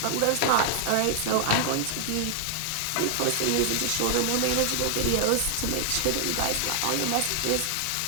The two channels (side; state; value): both; different; correlation 0.00